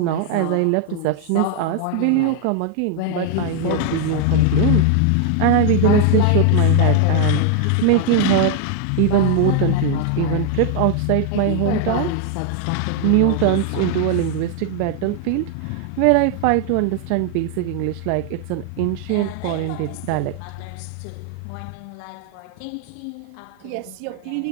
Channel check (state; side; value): different; both; correlation 0.00